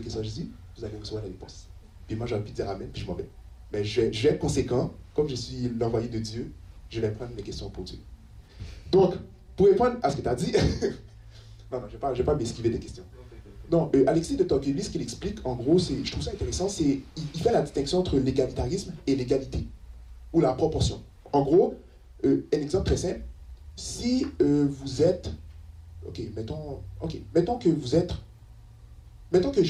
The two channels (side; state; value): both; identical; correlation 1.00